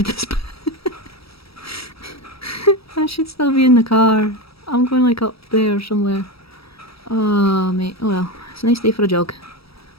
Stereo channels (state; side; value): late; right; 0.76 ms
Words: this. I should still be in the car. I'm going like up there somewhere. Oh mate, oh well. It's a nice day for a jog.